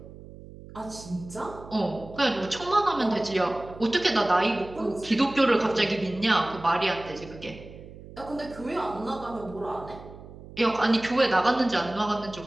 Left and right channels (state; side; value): noise; right; hum, 17 dB below the sound